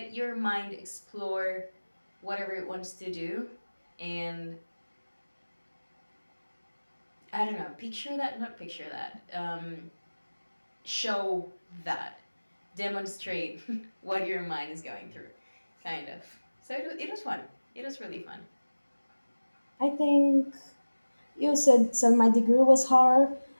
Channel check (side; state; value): both; inverted; correlation -1.00